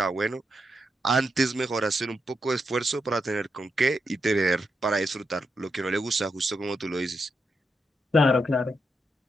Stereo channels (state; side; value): normal; both; correlation 0.84